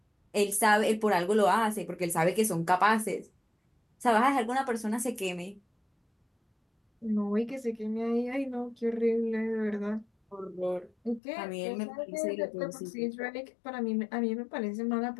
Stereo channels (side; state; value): right; drops out; at 11.2 s